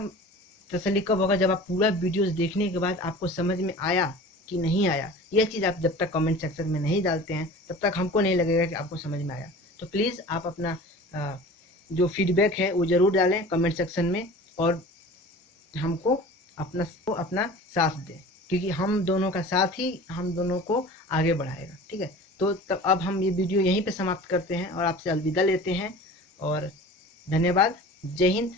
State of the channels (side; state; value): both; normal; correlation 0.40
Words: तसल्ली कब होगा, जब आप पूरा वीडियोस देखने के बाद आपको समझ में आया कि नहीं आया। यह चीज़ आप जब तक कमेंट सेक्शन में नहीं डालते हैं तब तक हमको नहीं लगेगा कि आपको समझ में आया। तो प्लीज़ आप अपना जो फीडबैक है वो ज़रूर डालें कमेंट सेक्शन में, और हमको अपना साथ दें, क्योंकि हम दोनों का साथ ही हम दोनों को आगे बढ़ाएगा। ठीक है, तो तब अब हम ये वीडियो यहीं पे समाप्त करते हैं और आपसे अलविदा लेते हैं। और धन्यवाद। जय हिंद,